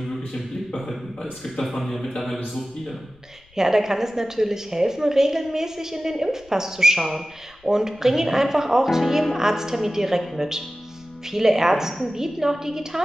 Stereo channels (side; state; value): left; noise; rumble, 29 dB below the sound